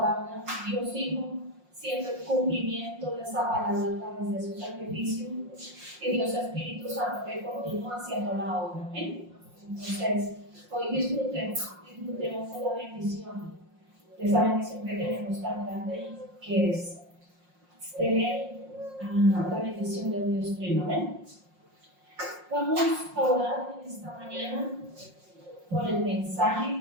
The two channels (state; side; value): late; left; 5.6 ms